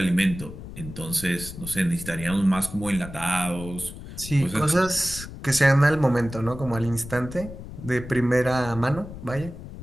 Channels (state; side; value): noise; left; rumble, 12 dB below the sound